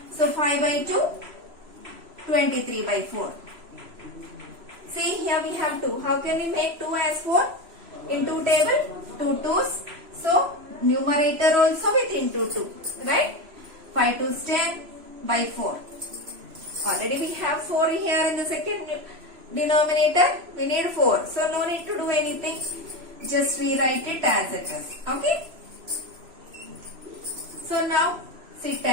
So 5 by 2, 23 by 4. See, here we have 2. How can we make 2 as 4? In 2 table, 2 2s. So, numerator also with into 2. Right? 5 2s 10 by 4. Already we have 4 here in the second denominator. We need 4. So, no need to do anything. Just rewrite it as it is. Okay? So, now, see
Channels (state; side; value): late; left; 3.0 ms